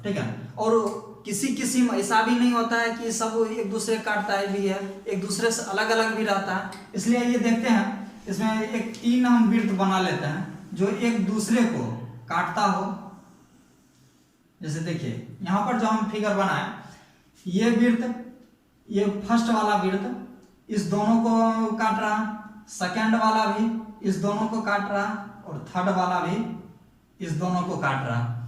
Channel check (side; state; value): both; identical; correlation 1.00